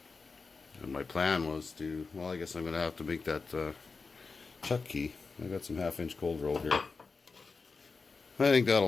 And my plan was to, well, I guess I'm going to have to make that chuck key. I got some 1/2-inch cold roll here. I think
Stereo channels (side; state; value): right; quieter; 4.4 dB